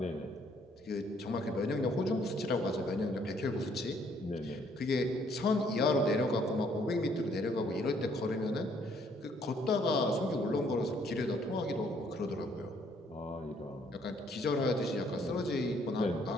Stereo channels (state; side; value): normal; both; correlation 0.66